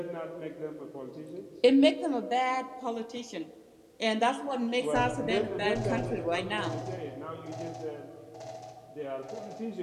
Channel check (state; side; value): identical; both; correlation 1.00